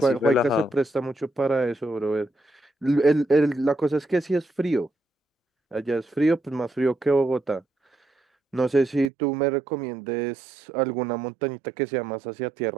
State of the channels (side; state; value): left; drops out; at 9.1 s